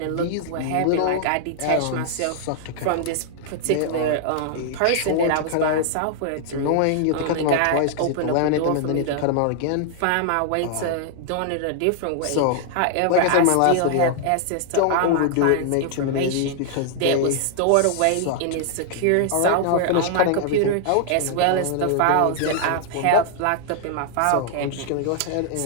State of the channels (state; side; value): different; both; correlation -0.01